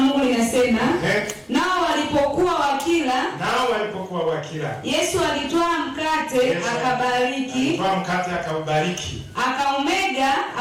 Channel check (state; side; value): identical; both; correlation 1.00